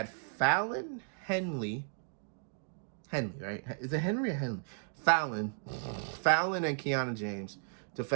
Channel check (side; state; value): left; silent; digital silence